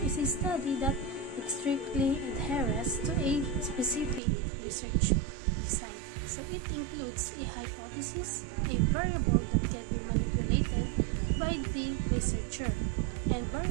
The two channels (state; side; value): drops out; left; at 4.2 s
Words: is a study that strictly adheres to a specific research design. So, it includes a hypothesis, a variable that can be manipulated by the researcher, and